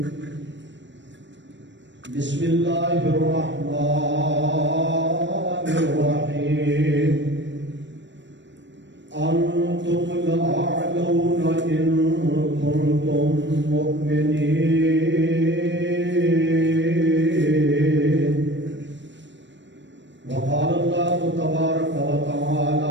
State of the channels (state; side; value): late; left; 0.53 ms